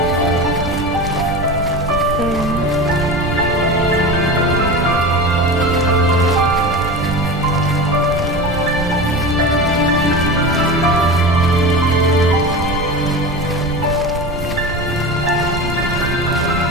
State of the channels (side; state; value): right; noise; rumble, 7 dB below the sound